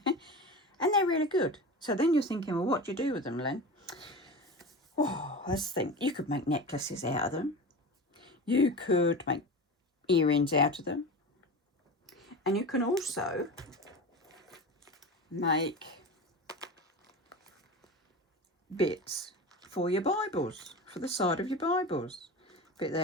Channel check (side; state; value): both; normal; correlation 0.29